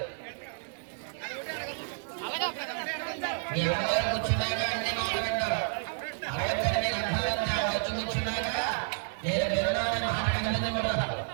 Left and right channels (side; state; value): left; silent; digital silence